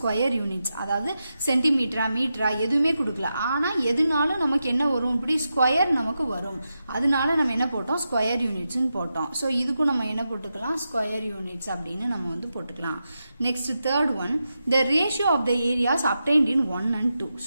யூனிட்ஸ், அதாவது சென்டிமீட்டரா மீட்டரா எதுவுமே கொடுக்கல. ஆனால் எதுனாலும் நமக்கு என்ன வரும்? இப்படி ஸ்கொயர் நமக்கு வரும். அதனால நம்ம என்ன போட்டோம்? ஸ்கொயர் யூனிட்ஸ்ன்னு போட்டோம். ஸோ இதுக்கும் நம்ம என்ன போட்டுக்கலாம்? ஸ்கொயர் யூனிட்ஸ் அப்படின்னு நம்ம வந்து போட்டுக்கலாம். Next third one, the ratio of the areas obtained in 1 and 2.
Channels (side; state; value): both; inverted; correlation -0.89